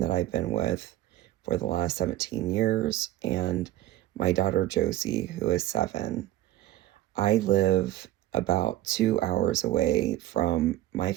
that I've been with for the last 17 years and my daughter Josie, who is 7. I live about 2 hours away from my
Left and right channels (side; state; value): left; quieter; 14.5 dB